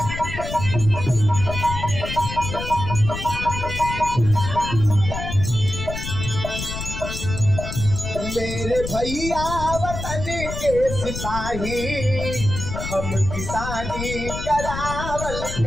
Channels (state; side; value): noise; left; rumble, 6 dB below the sound